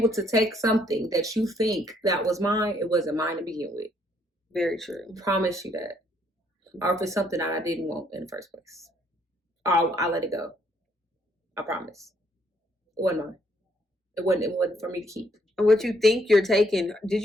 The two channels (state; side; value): normal; both; correlation 0.69